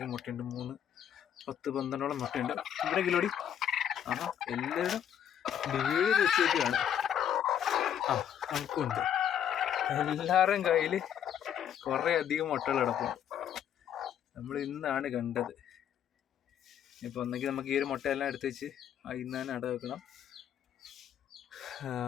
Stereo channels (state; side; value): quieter; right; 9.5 dB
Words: മുട്ടയുണ്ട്. 10-12 മുട്ടയുണ്ട്. ഇവിടെ കിലോടി എല്ലാവരും വീട് വെച്ചേക്കാണ്. നമുക്കുണ്ട്. എല്ലാവരുടെയും കയ്യിൽ കുറേ അധികം മുട്ടകൾ കിടപ്പുണ്ട്. നമ്മൾ ഇന്നാണ് കണ്ടത്. ഇപ്പോൾ ഒന്നെങ്കിൽ നമുക്ക് ഈ ഒരു മുട്ടയെല്ലാം എടുത്ത് വെച്ച് ഇന്ന് തന്നെ അട വെക്കണം.